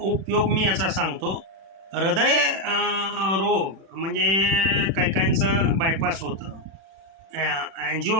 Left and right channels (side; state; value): left; late; 36 ms